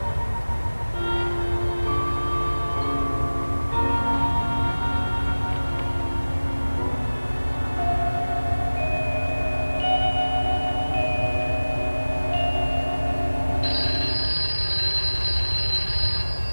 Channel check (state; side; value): inverted; both; correlation -1.00